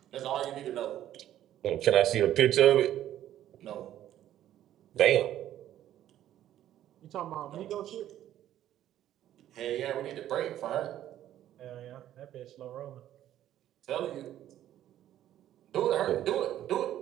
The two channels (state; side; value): quieter; left; 12.1 dB